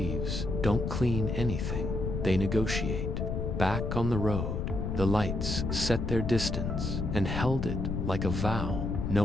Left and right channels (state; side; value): noise; left; rumble, 2 dB below the sound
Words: don't clean anything, they negotiate. Back on the road, the lights set their distance and held it like a vow